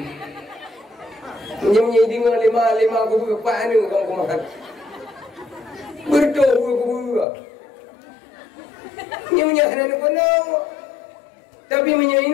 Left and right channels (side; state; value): right; drops out; at 7.2 s